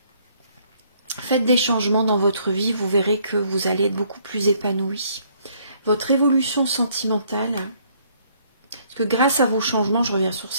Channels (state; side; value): inverted; both; correlation -0.65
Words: Faites des changements dans votre vie, vous verrez que vous allez être beaucoup plus épanoui. Votre évolution sentimentale, parce que grâce à vos changements, je reviens sur